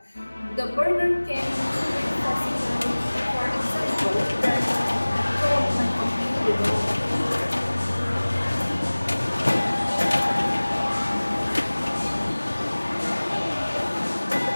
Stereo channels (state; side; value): inverted; both; correlation -1.00